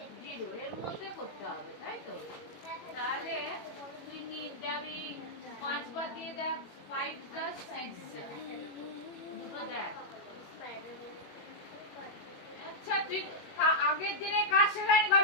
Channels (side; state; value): right; late; 21 ms